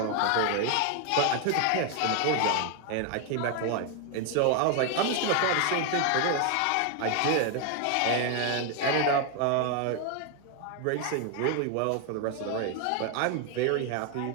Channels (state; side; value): different; both; correlation 0.01